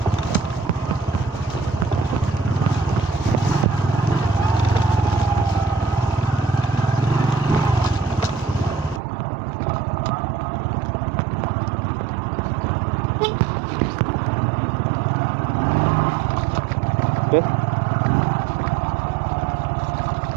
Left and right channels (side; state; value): left; drops out; at 9.0 s